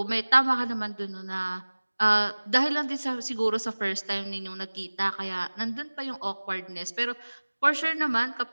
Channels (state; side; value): inverted; both; correlation -1.00